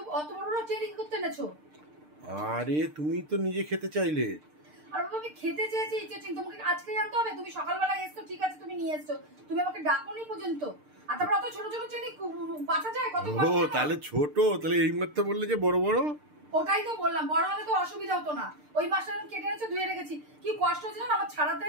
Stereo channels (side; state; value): left; late; 6.6 ms